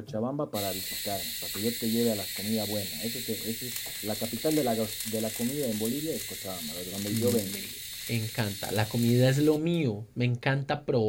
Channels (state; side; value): identical; both; correlation 1.00